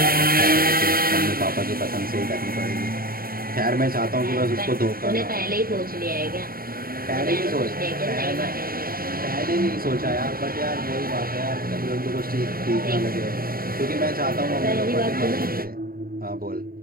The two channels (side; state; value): left; late; 0.43 ms